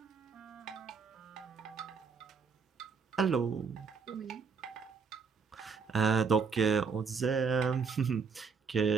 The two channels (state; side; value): quieter; left; 5.5 dB